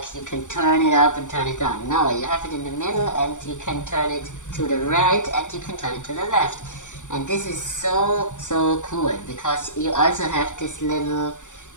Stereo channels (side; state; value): right; late; 0.85 ms